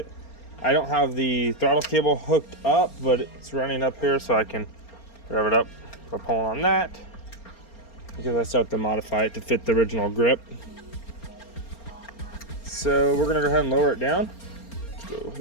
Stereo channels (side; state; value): right; late; 4.3 ms